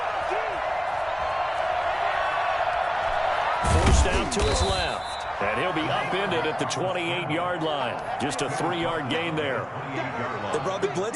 Forced out to his left. And he'll be upended at the 28-yard line. Just a 3-yard gain there. They brought the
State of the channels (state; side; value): identical; both; correlation 1.00